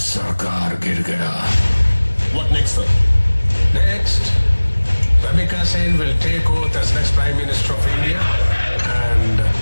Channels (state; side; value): inverted; both; correlation -1.00